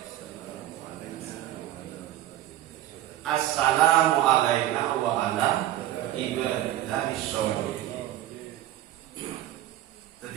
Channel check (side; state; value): left; quieter; 13.5 dB